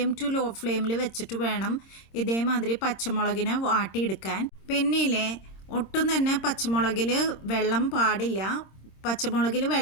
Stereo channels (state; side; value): late; right; 26 ms